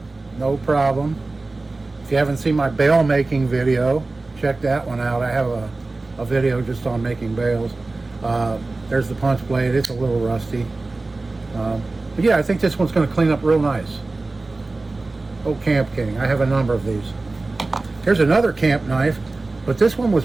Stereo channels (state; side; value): quieter; left; 3.3 dB